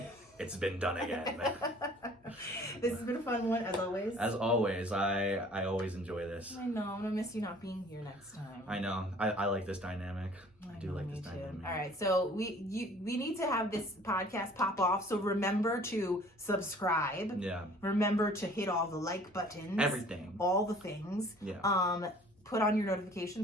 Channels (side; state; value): both; normal; correlation 0.52